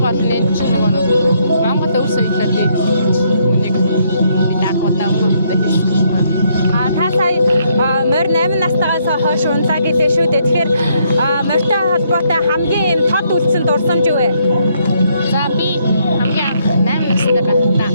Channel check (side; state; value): both; inverted; correlation -0.72